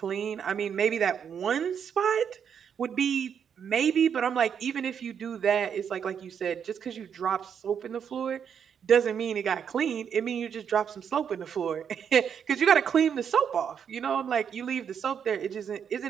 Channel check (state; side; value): quieter; left; 7.7 dB